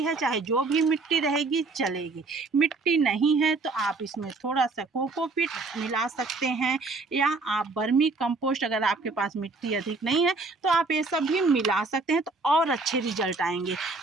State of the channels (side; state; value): left; quieter; 3.7 dB